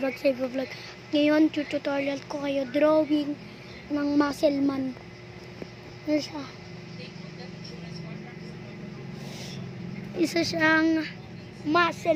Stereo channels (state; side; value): identical; both; correlation 1.00